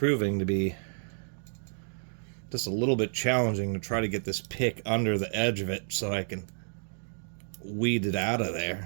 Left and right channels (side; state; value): left; silent; digital silence